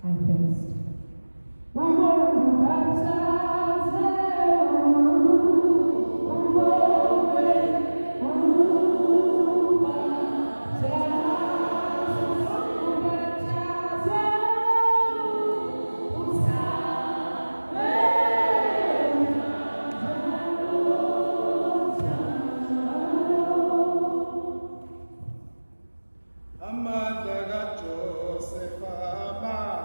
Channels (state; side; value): inverted; both; correlation -1.00